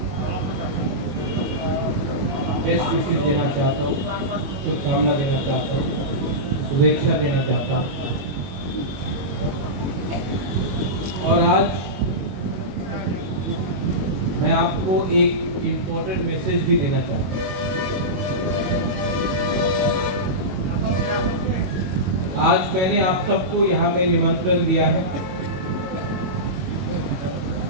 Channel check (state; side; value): late; left; 22 ms